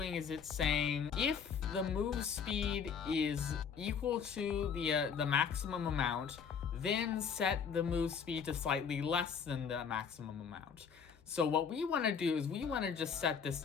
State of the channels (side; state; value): right; quieter; 6.7 dB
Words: is it's saying if the move speed is equal to the maximum amount, then set the move speed to slightly less than the maximum amount. So what we want to do is we want to just set this